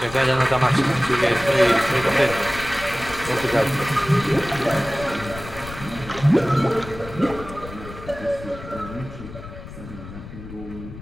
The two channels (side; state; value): left; noise; rumble, 13 dB below the sound